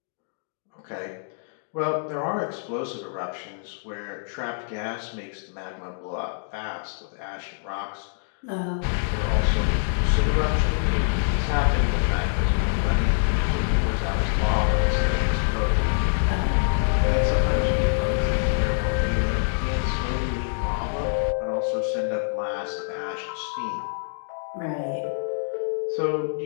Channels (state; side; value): silent; right; digital silence